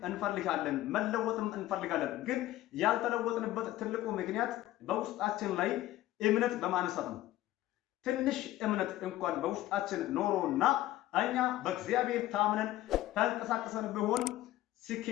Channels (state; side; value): quieter; right; 15.1 dB